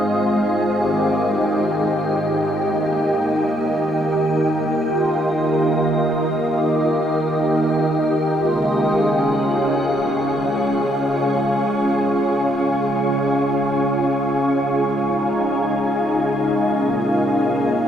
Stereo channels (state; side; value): normal; both; correlation 0.73